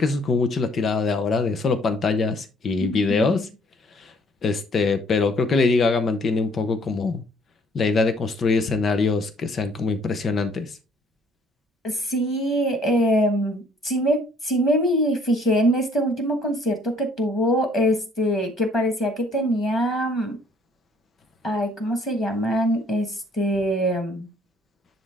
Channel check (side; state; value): both; normal; correlation 0.61